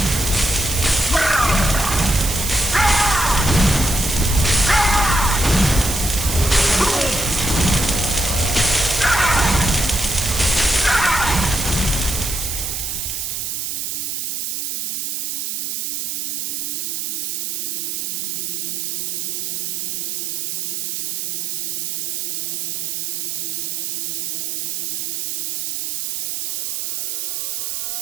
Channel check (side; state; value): right; noise; hiss, 2 dB below the sound